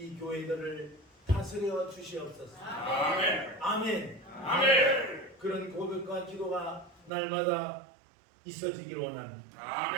교회들을 다스려 주시옵소서. 아멘. 아멘. 아멘. 그런 고백과 기도가 날마다 있어지기를 원합니다.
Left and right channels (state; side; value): drops out; left; at 7.1 s